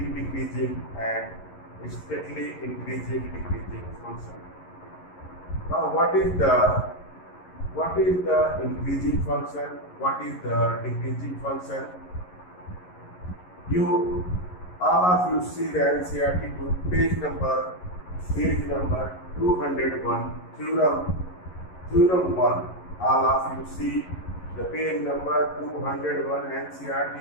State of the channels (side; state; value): right; late; 11 ms